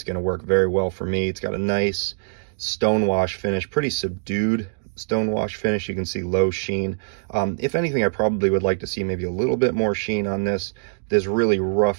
going to work very well for me. It's got a nice stonewash finish, pretty subdued stonewash finish. You can see low sheen. If anything, I probably would like to see maybe a little bit more sheen on this. This really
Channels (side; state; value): left; silent; digital silence